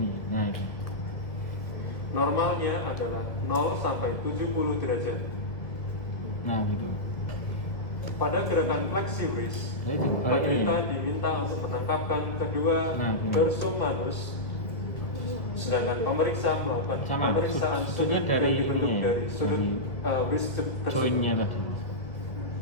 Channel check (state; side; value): late; right; 2.0 ms